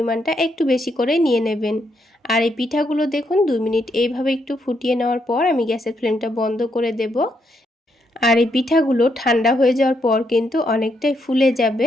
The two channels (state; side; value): normal; both; correlation 0.77